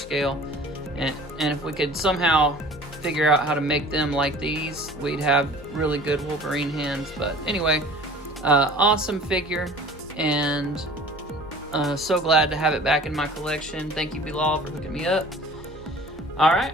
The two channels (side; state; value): both; normal; correlation 0.45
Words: And if we could somehow figure out how to make them like these, we'd have really good Wolverine hands. But anyway, awesome figure, and so glad to have it back in my collection. Thank you, Bilal, for hooking me up. All right,